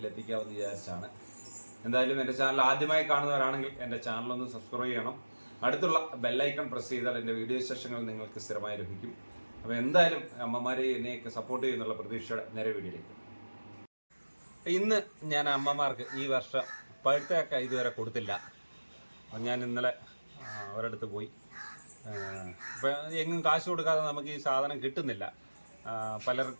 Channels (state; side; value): inverted; both; correlation -1.00